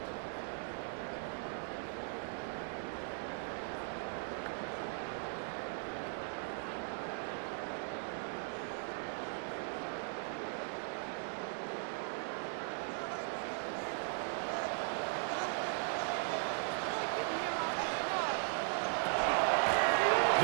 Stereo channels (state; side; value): silent; left; 52 dB below the other